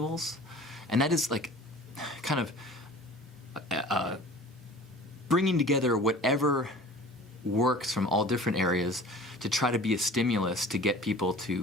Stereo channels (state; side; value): normal; both; correlation 0.43